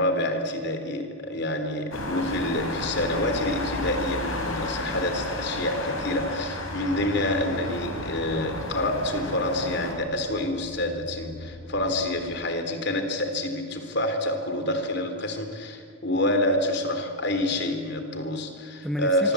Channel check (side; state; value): both; normal; correlation 0.00